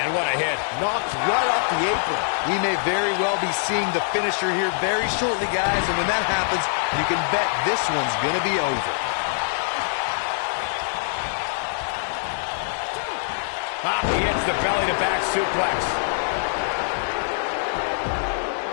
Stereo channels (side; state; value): right; silent; digital silence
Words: what a hit. Knocked right off the apron. We may very well be seeing the finisher here very shortly, guys, and when that happens, you can bet this one's going to be over. He hits the belly-to-back suplex.